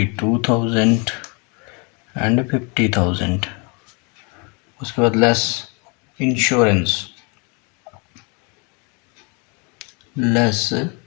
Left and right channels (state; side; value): quieter; right; 32.3 dB